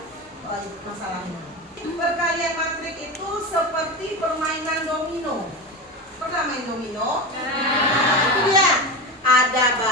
masalahnya. Perkalian matrik itu seperti permainan domino. Pernah main domino? Nah, itu dia. Ada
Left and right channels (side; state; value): both; normal; correlation 0.23